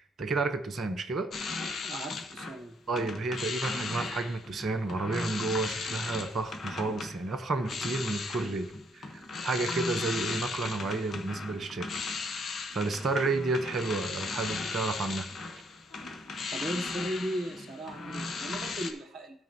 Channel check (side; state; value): both; normal; correlation 0.70